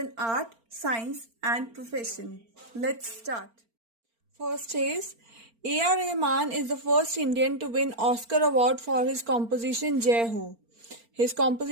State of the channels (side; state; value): left; late; 4.4 ms